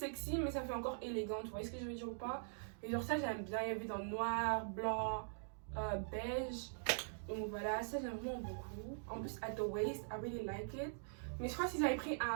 mais ça fait encore élégante. Vous voyez ce que je veux dire ou pas? Et genre, ça, j'aime bien. Il y avait dans noir, blanc, beige. Donc voilà, ça, j'aime vraiment beaucoup. En plus, at the waist, I really like it. Mais je crois que s'ils avaient pris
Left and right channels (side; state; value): left; silent; digital silence